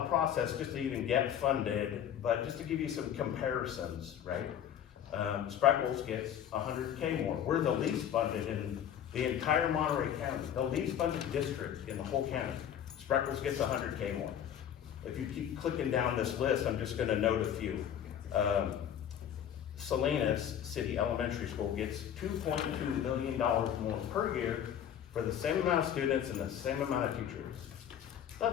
process just to even get funded, but just to give you some comparisons, right? Spreckles gets $100K more. We're the least funded in the entire Monterey County, the least funded district in the whole county. Spreckles gets $100K more. If you keep clicking down this list, I'm just gonna note a few. Salinas City Elementary School gets $2.2 million more per year for the same amount of students and the same amount of teachers.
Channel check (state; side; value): quieter; right; 9.7 dB